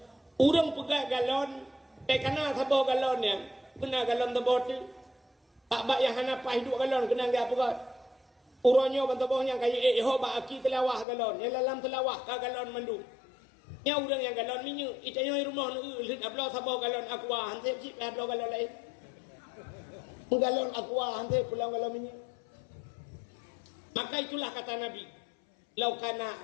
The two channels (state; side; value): drops out; right; at 11.1 s